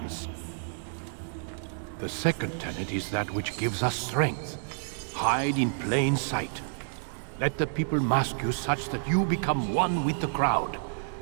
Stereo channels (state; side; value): silent; left; digital silence